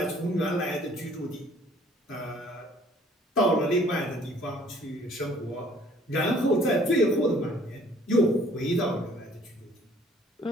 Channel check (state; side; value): normal; both; correlation 0.57